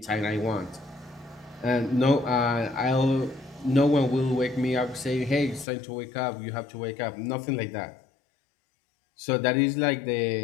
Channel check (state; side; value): drops out; right; at 5.7 s